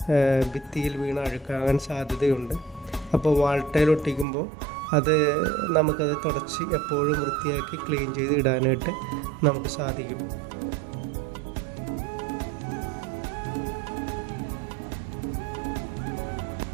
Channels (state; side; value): drops out; left; at 4.2 s